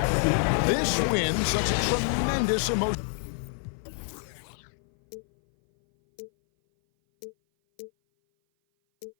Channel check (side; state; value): right; silent; 57 dB below the other